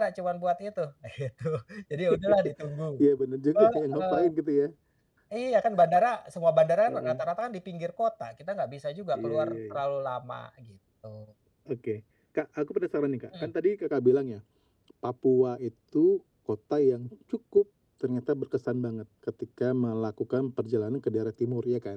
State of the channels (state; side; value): identical; both; correlation 1.00